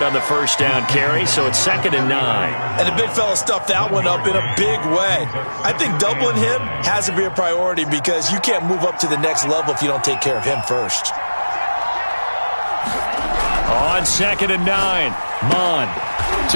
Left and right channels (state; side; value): inverted; both; correlation -1.00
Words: on the first down carry, so it's 2nd and 9. And the big fella stuffed that one up in a big way. I think doubling him has to be a priority because you can't move up to the next level if you don't take care of him first. On 2nd and 9, Mon